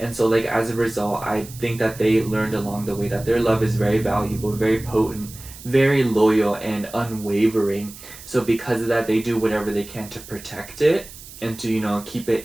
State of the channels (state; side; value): noise; right; hiss, 17 dB below the sound